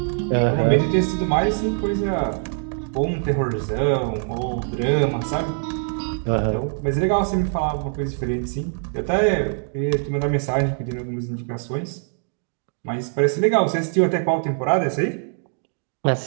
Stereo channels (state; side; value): silent; left; digital silence